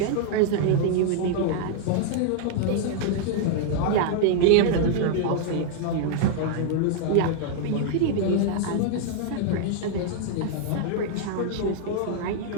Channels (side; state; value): both; different; correlation -0.01